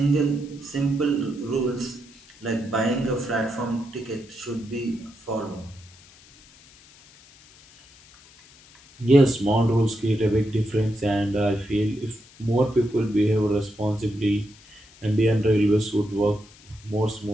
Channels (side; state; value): left; noise; hiss, 25 dB below the sound